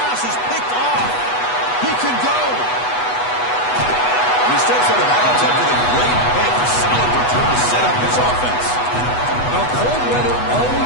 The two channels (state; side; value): late; right; 8.1 ms